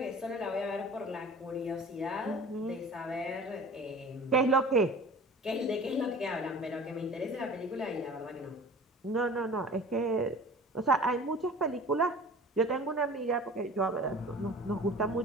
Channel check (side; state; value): both; normal; correlation 0.42